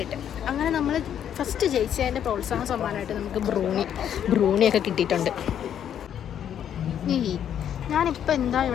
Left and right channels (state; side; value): quieter; right; 9.5 dB